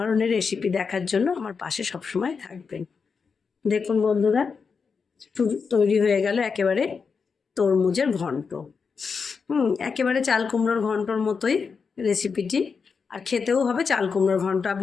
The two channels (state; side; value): quieter; right; 5.4 dB